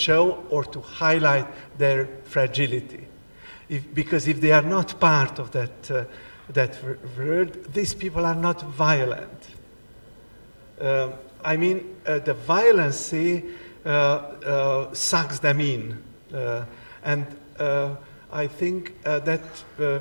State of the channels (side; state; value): both; inverted; correlation -1.00